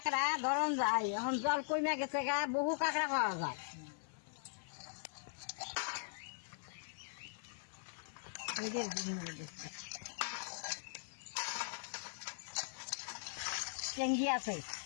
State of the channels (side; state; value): right; silent; 51 dB below the other